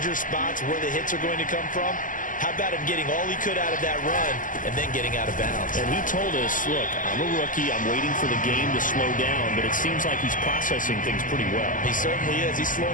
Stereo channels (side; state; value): right; late; 0.38 ms